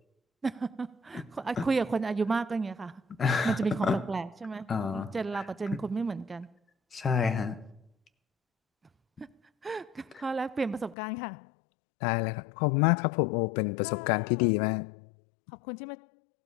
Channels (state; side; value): drops out; right; at 11.0 s